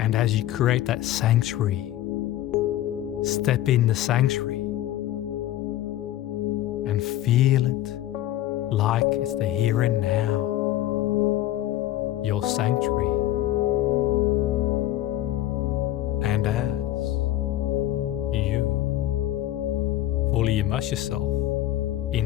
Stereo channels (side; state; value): right; quieter; 13.8 dB